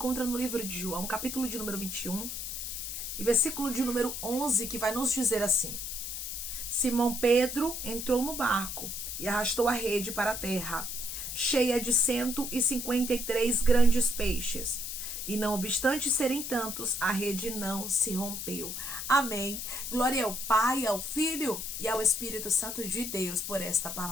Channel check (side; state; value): left; noise; hiss, 5 dB below the sound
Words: no livro de João, capítulo de número 21, e versículo de número 11, que vai nos dizer assim: Simão Pedro entrou no barco e arrastou a rede para a terra, cheia de 153 grandes peixes. E não obstante serem tantos, a rede não se rompeu. Amém. Glória ao Pai, ao Filho e ao Espírito Santo de Deus por esta